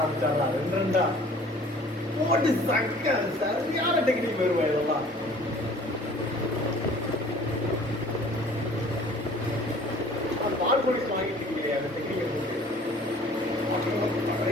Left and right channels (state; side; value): normal; both; correlation 0.51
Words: 2 போட்டு சக்க சரியான டெக்னிக் வருவா இதெல்லாம். பால் போலீஸ் வாங்கிட்டு இருக்கீங்க அந்த டெக்னிக்கை போட்டு